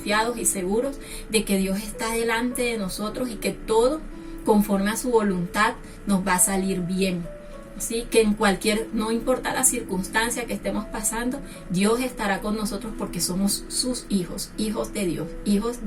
y seguros de que Dios está delante de nosotros y que todo, conforme a su voluntad, nos va a salir bien. Así que no importa la circunstancia que estemos pasando, Dios estará con nosotros porque somos sus hijos, hijos de Dios, hijos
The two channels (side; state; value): both; identical; correlation 1.00